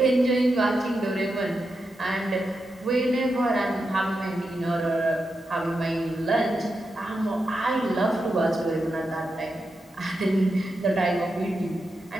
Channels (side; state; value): both; normal; correlation 0.87